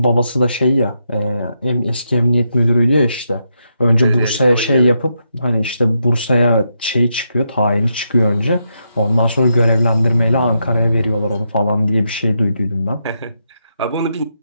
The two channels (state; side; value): inverted; both; correlation -0.82